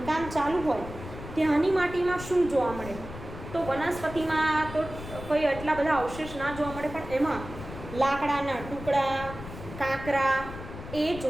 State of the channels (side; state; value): left; noise; rumble, 12 dB below the sound